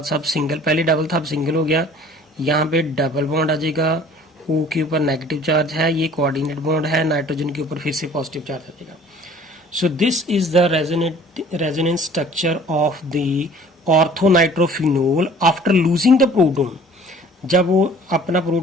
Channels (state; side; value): normal; both; correlation 0.50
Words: सब सिंगल, पहले डबल था अब सिंगल हो गया, यहाँ पे डबल बॉन्ड आ जाएगा, ओ के ऊपर नेगेटिव चार्ज है, ये कोऑर्डिनेट बॉन्ड है, नाइट्रोजन के ऊपर फिर से पॉजिटिव चार्ज आ जाएगा। So this is the resonance structure of the orthonitrophenol after losing the proton. जब वो अपना